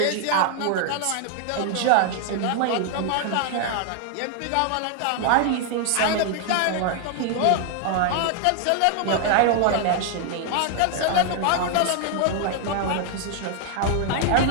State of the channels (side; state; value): both; different; correlation 0.00